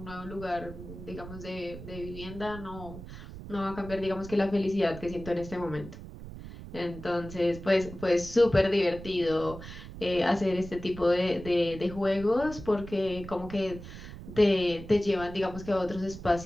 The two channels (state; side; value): noise; right; rumble, 13 dB below the sound